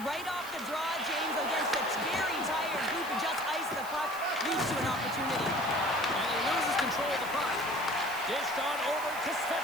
right off the draw, James, against a very tired group and just ice the puck, leads to an opportunity. And he loses control of the puck. Dished on over to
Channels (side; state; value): right; noise; hiss, 15 dB below the sound